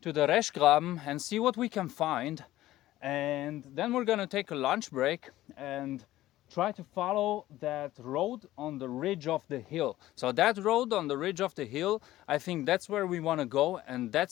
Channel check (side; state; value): right; quieter; 15.3 dB